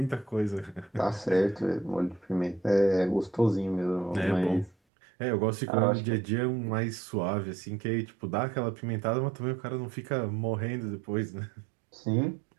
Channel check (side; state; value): left; drops out; at 4.8 s